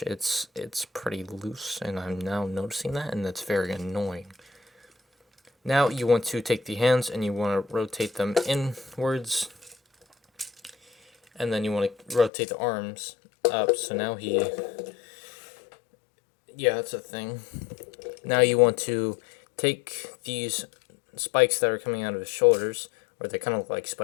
It's pretty loose, and I'm now noticing that, and that's very annoying. Now you want to take the hands and you want to rotate them inwards, and then you want to rotate the arms up. So now yeah, that's a thing. Now you want to take these spikes that are coming out of his shoulders, or they kind of look like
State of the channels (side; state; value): right; drops out; at 12.3 s